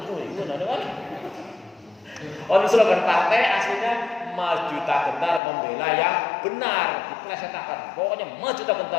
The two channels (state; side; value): drops out; right; at 5.4 s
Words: kan? Slogan partai aslinya maju tak gentar, membela yang benar. Diplesetkan. Pokoknya maju tak